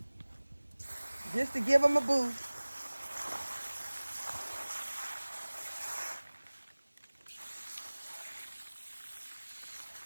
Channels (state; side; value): inverted; both; correlation -1.00